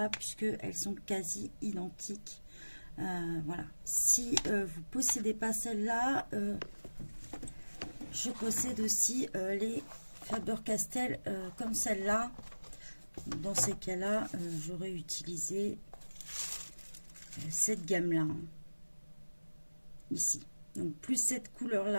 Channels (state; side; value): inverted; both; correlation -1.00